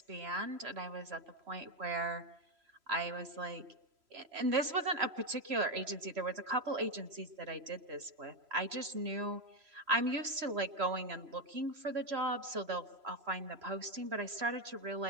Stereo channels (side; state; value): left; late; 3.0 ms